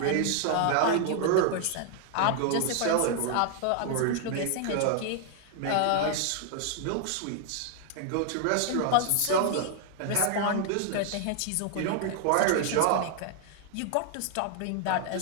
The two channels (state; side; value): different; both; correlation 0.00